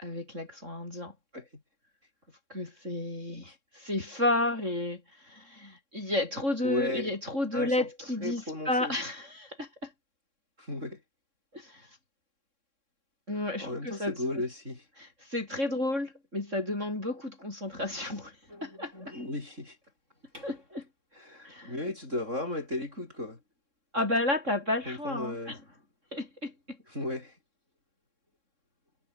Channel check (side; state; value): left; late; 3.6 ms